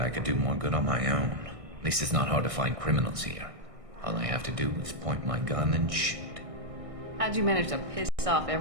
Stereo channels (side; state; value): left; late; 1.6 ms